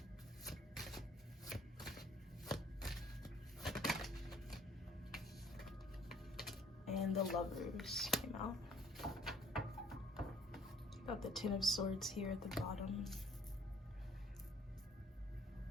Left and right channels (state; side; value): normal; both; correlation 0.59